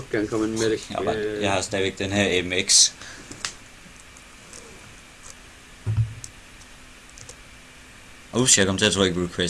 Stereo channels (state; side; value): identical; both; correlation 1.00